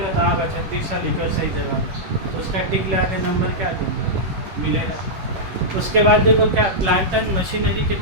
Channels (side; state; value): left; late; 11 ms